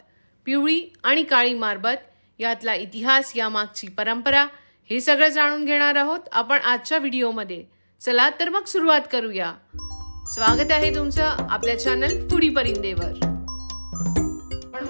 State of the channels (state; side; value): inverted; both; correlation -1.00